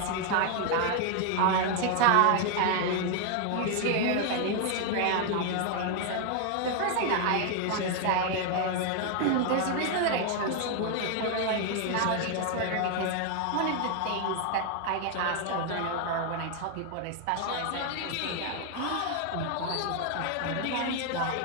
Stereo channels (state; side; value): different; both; correlation 0.01